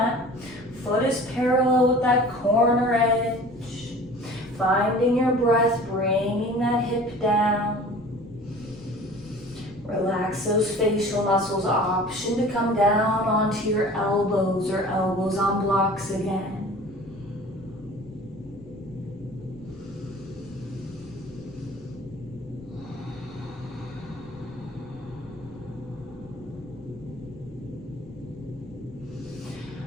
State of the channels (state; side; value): noise; left; rumble, 22 dB below the sound